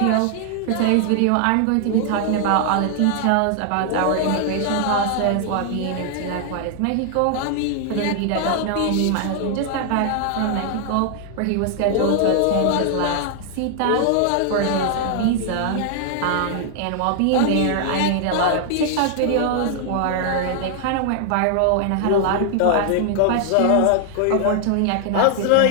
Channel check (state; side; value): different; both; correlation 0.00